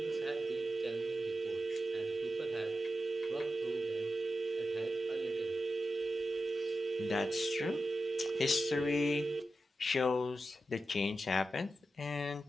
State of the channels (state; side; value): normal; both; correlation 0.91